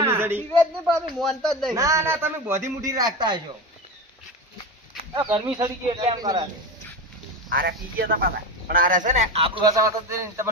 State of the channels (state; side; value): normal; both; correlation 0.23